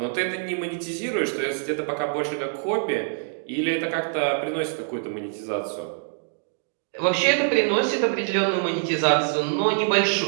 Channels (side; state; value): left; silent; digital silence